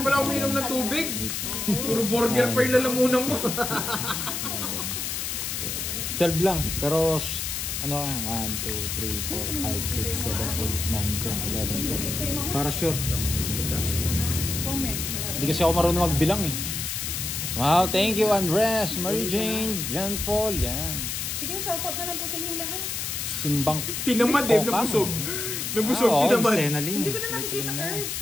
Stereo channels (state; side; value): noise; left; hiss, 3 dB below the sound